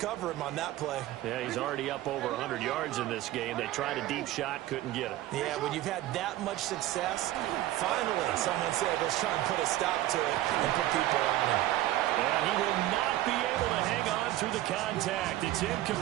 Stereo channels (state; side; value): quieter; left; 15.1 dB